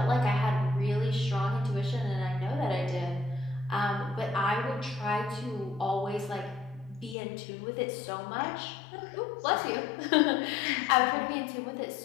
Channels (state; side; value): drops out; right; at 7.2 s